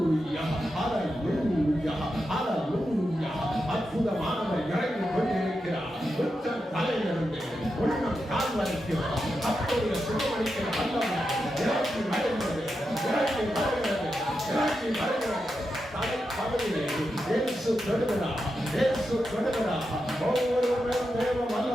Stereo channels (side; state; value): both; normal; correlation 0.88